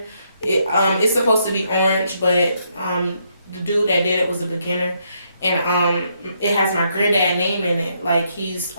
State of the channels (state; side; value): inverted; both; correlation -0.75